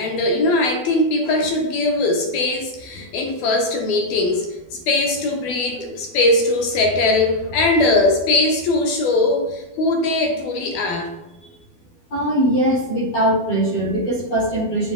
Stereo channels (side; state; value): right; late; 12 ms